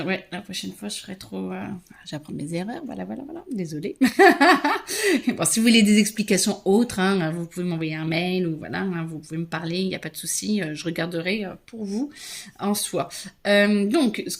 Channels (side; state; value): both; identical; correlation 1.00